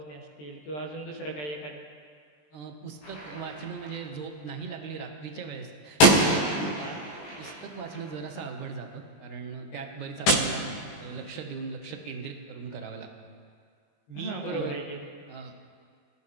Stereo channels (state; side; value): late; right; 20 ms